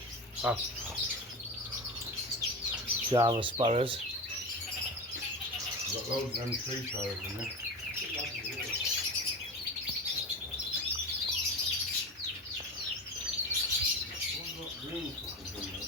Ah. Java sparrows. Got loads of them tree sparrows in there.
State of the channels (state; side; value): normal; both; correlation 0.25